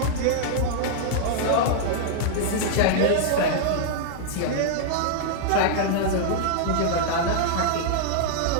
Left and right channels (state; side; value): different; both; correlation -0.01